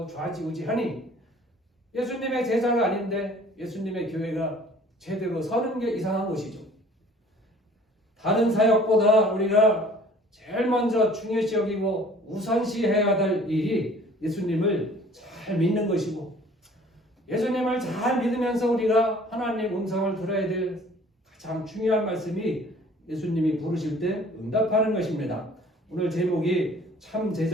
좌지우지하니 예수님의 제자가 아닌데 예수님의 교회가 제대로 서는 게 이상한 것이죠. 다른 사역보다 우리가 제일 먼저 중요시 여기고 우선시해야 될 일이 예수님을 잘 믿는 것이고, 예수님을 잘 믿으면서 우리가 하나님 음성을 들어야 될 가장 중요한 말씀이 예수님이 부르실 때 응답하는 것입니다. 오늘 제목이 참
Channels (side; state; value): both; normal; correlation 0.52